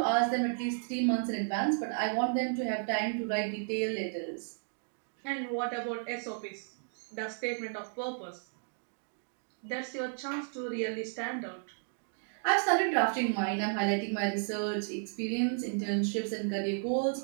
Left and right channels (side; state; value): left; silent; digital silence